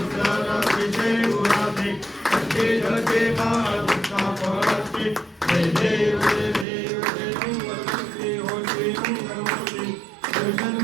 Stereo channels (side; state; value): left; drops out; at 6.7 s